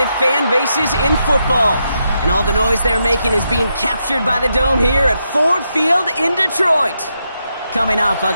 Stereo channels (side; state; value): both; inverted; correlation -0.83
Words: fan bases in football. And all the noise they're making is being captured by the Dome here at Ford Field in Detroit. Coming up, a